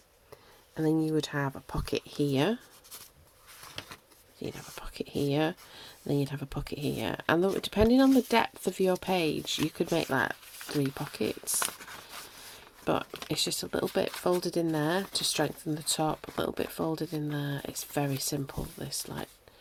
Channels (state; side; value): identical; both; correlation 1.00